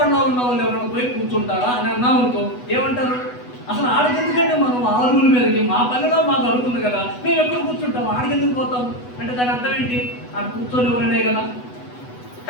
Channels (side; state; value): right; late; 8.1 ms